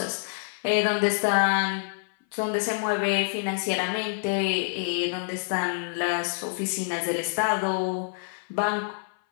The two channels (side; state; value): right; silent; 57 dB below the other